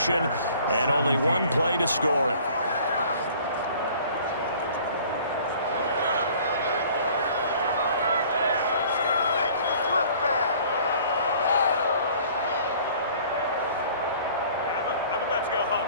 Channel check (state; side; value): inverted; both; correlation -0.51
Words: and only one play to score it. I'm about to go home.